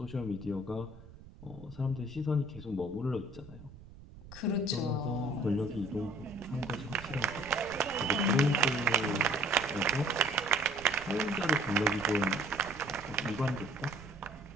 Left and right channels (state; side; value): noise; right; rumble, 18 dB below the sound